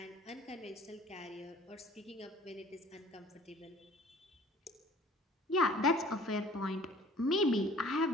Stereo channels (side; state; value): both; normal; correlation 0.52